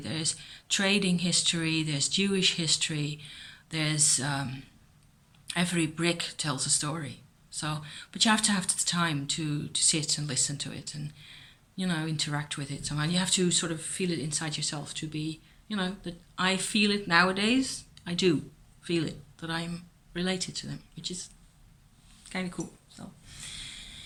trading history, there's Jewish history, there's every brick tells a story. So, but you have to have the time to sit and listen to it and interact with it. So, and you have to sort of feel it inside yourself to be, that I feel it nowadays. I do feel it, that I'm related to them, which is kind of cool. So,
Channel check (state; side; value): identical; both; correlation 1.00